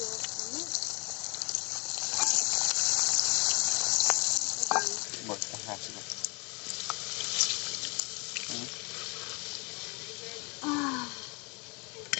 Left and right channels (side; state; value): right; quieter; 30.9 dB